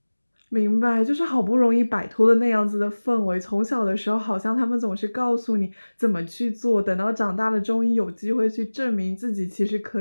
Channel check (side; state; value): both; inverted; correlation -1.00